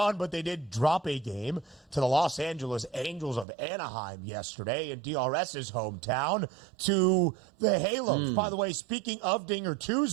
but they did drop a game to the Los Angeles Angels of Anaheim yesterday in DRS's hometown to the Halos. By the way, speaking of Dinger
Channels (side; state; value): left; drops out; at 3.5 s